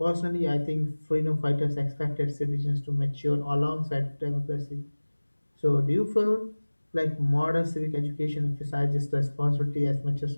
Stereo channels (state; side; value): inverted; both; correlation -1.00